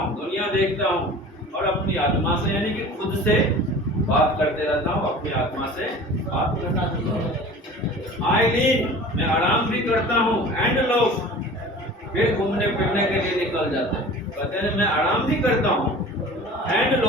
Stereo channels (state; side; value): normal; both; correlation 0.41